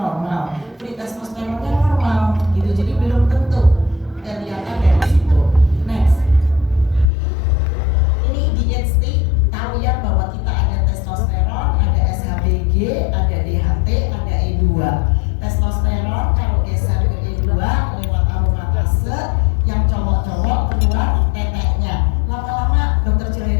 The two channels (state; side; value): drops out; right; at 7.1 s